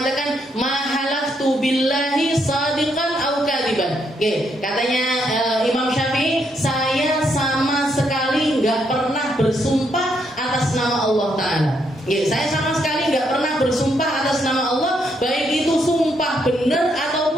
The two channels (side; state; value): both; normal; correlation 0.76